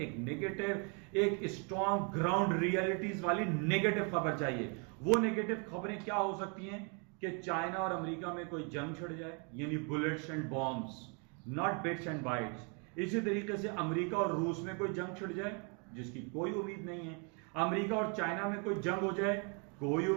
नेगेटिव, एक स्ट्रॉन्ग ग्राउंड रियलिटीज वाली नेगेटिव खबर चाहिए। वो नेगेटिव खबरें क्या हो सकती हैं कि चाइना और अमेरिका में कोई जंग छिड़ जाए, यानी bullets and bombs, not bits and bytes. इसी तरीके से अमेरिका और रूस में कोई जंग छिड़ जाए, जिसकी कोई उम्मीद नहीं है। अमेरिका और चाइना में कोई जंग हो जाए, कोई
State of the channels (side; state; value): left; quieter; 36.3 dB